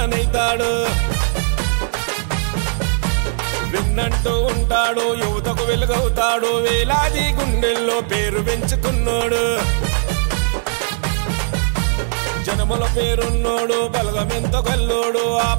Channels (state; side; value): silent; left; digital silence